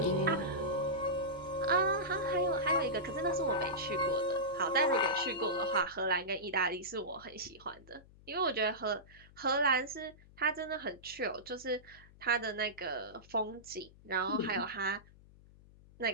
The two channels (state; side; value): noise; left; hum, 23 dB below the sound